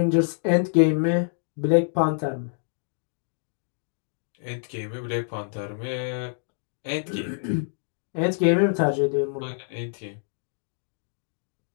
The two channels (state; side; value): silent; right; digital silence